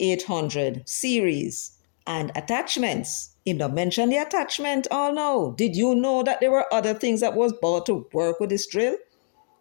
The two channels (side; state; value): right; silent; digital silence